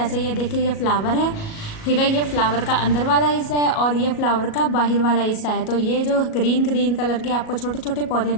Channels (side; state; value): right; late; 37 ms